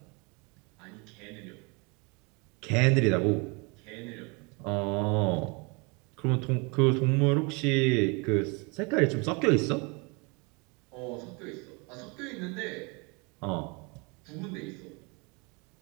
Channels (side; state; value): left; quieter; 30.1 dB